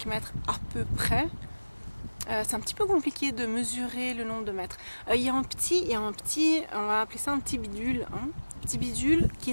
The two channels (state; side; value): inverted; both; correlation -1.00